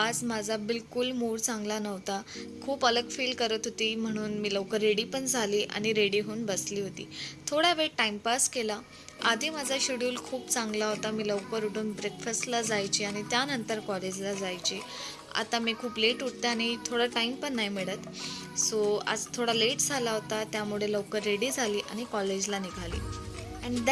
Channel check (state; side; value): identical; both; correlation 1.00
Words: माझा बिलकुल मूड चांगला नव्हता. खूप अलग फील करत होती, म्हणून मी लवकर रेडी पण झाली आणि रेडी होऊन बसली होती. थोडा वेळ टाईमपास केला. आधी माझा शेड्यूल खूप चांगला होता. मी लवकर उठून ब्रेकफास्टला जायची आणि त्यानंतर कॉलेजला जायची. आता मी खूप लेट उठते आणि थोडा टाईम पण नाही मिळत. सो आज थोडा लेट झाला होता, त्यामुळे लवकर रेडी झाली आणि कॉलेजला निघाली. अँड